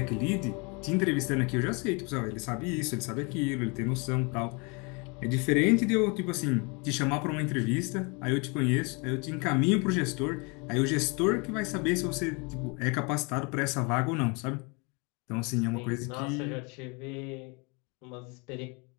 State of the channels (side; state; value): right; quieter; 30.9 dB